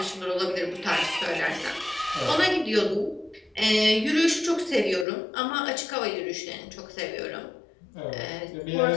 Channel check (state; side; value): drops out; right; at 5.1 s